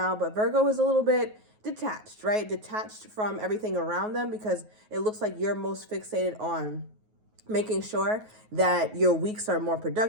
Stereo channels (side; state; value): left; late; 9.4 ms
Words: But Virgo is a little bit detached, right? Detached from everything around them because it looks like you're most fixated on making sure that your weeks are more